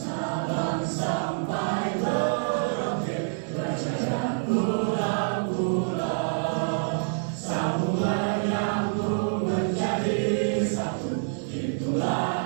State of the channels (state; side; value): silent; left; digital silence